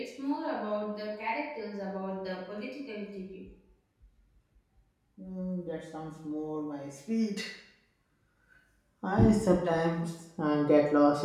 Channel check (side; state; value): both; identical; correlation 1.00